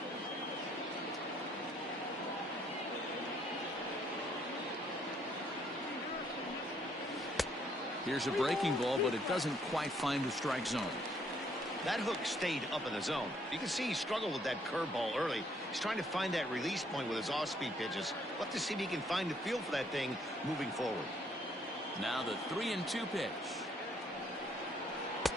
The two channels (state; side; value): normal; both; correlation 0.67